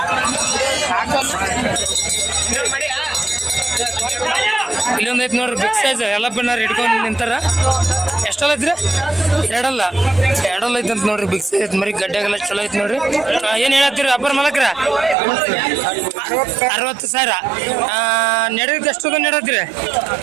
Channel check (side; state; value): left; drops out; at 15.2 s